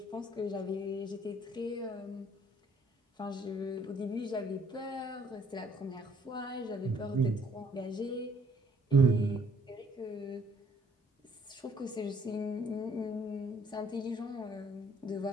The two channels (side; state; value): both; normal; correlation 0.62